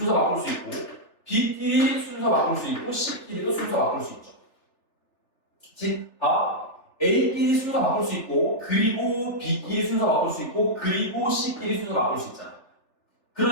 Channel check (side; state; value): right; late; 3.4 ms